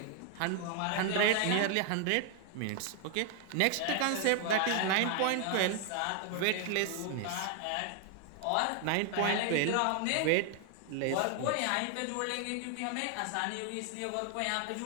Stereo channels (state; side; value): different; both; correlation 0.00